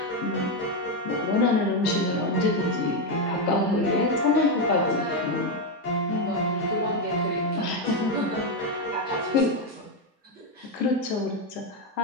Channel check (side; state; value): both; normal; correlation 0.06